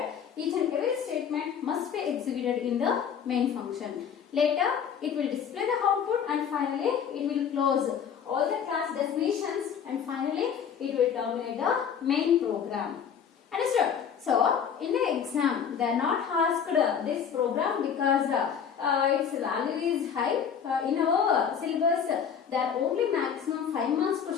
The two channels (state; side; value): quieter; right; 7.6 dB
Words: each and every statement must be executed in the main function. Later, it will display the output and finally, it will close all the class definitions and finally, it will terminate the main program. Understood? So, in the exam, they are not asked this program because its value is high. In our syllabus, there are only maximum 5 marks